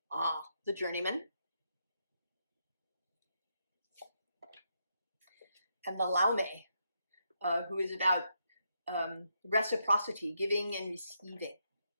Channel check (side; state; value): both; inverted; correlation -0.80